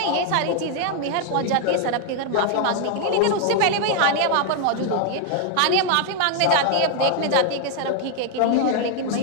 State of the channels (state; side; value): different; both; correlation 0.00